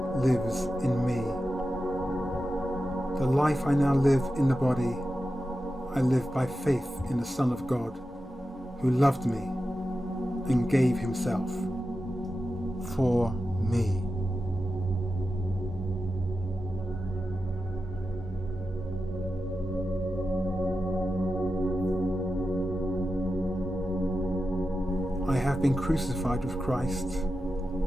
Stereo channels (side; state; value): both; normal; correlation 0.91